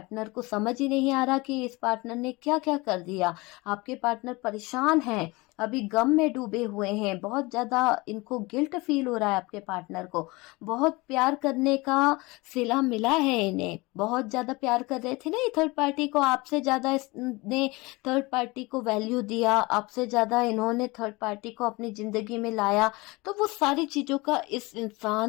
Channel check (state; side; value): quieter; right; 23.7 dB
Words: को समझ ही नहीं आ रहा कि इस पार्टनर ने क्या क्या कर दिया। आपके पार्टनर परेशान हैं, अभी गम में डूबे हुए हैं, बहुत ज्यादा इनको गिल्ट फील हो रहा है। आपके पार्टनर को बहुत प्यार करने का सिला मिला है, इन्हें बहुत ज्यादा प्यार कर रहे थे ना ये थर्ड पार्टी को, आपसे ज्यादा इसने थर्ड पार्टी को वैल्यू दिया, आपसे ज्यादा इन्होंने थर्ड पार्टी को अपनी जिंदगी में लाया, तो वो सारी चीजों का इस